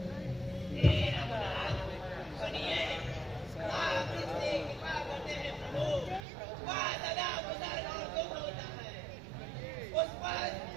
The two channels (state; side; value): drops out; left; at 6.2 s